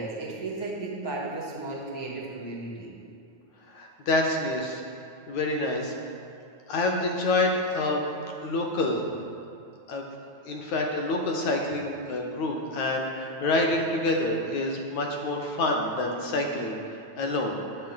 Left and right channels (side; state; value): right; late; 9.3 ms